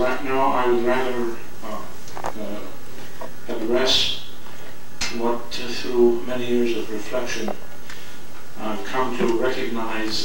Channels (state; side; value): identical; both; correlation 1.00